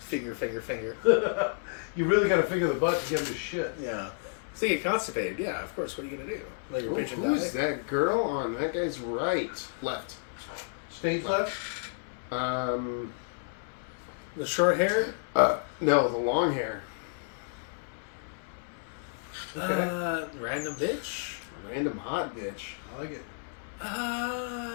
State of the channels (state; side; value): silent; right; 57 dB below the other